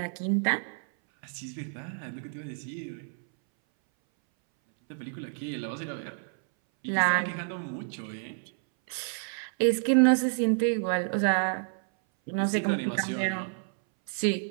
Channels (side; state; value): left; silent; 58 dB below the other